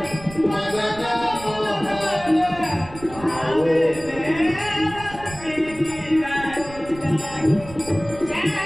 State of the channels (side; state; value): right; noise; rumble, 16 dB below the sound